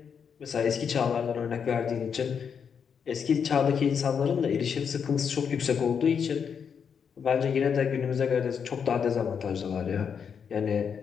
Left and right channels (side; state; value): right; quieter; 6.9 dB